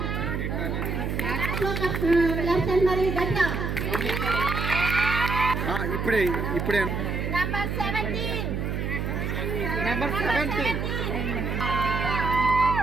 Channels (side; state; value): right; noise; hum, 2 dB below the sound